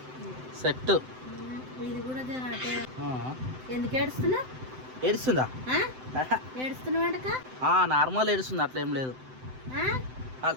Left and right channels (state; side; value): late; left; 7.8 ms